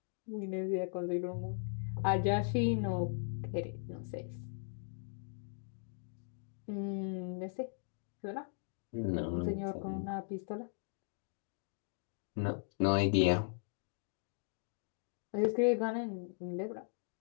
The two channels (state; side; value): silent; right; digital silence